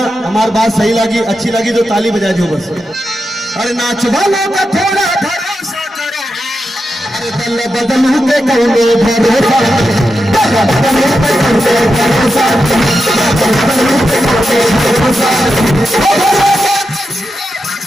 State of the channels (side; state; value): both; normal; correlation 0.88